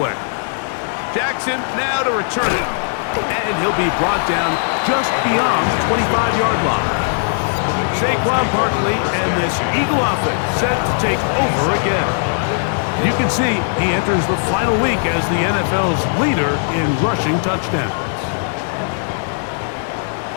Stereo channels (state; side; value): silent; right; digital silence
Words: Jackson now to return it. And he'll be brought down just beyond the 25-yard line. Saquon Barkley and this Eagle offense set to take over again. You can see he enters the final week as the NFL's leader in rushing touchdowns.